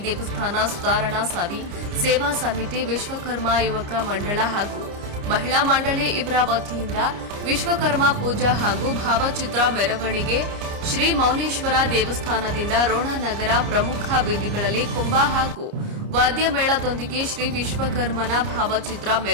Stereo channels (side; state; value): left; late; 29 ms